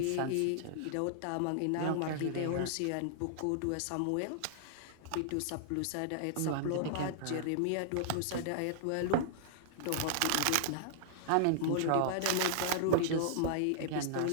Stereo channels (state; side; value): different; both; correlation -0.01